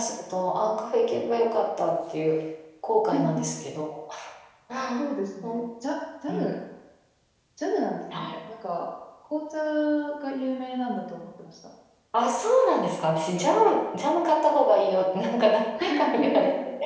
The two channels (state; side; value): identical; both; correlation 1.00